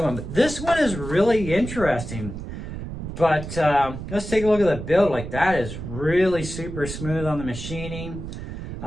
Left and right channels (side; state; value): right; noise; rumble, 8 dB below the sound